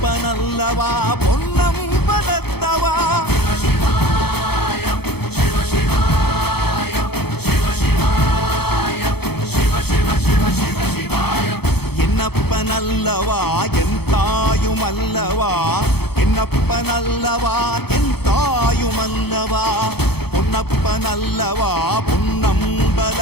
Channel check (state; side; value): late; right; 0.97 ms